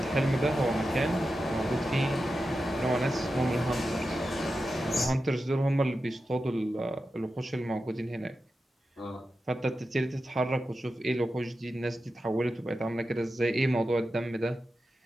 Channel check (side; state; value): both; normal; correlation 0.91